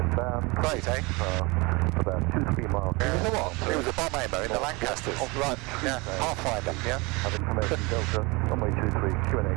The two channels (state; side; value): quieter; left; 26.0 dB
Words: Great, eh? About 2-3 miles. He was a what? He was a bomb aimer in the Lancasters. Right, yeah. Pathfinder, yeah. Have information Delta, runway 23,